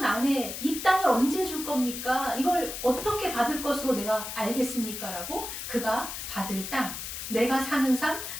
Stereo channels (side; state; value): left; noise; hiss, 7 dB below the sound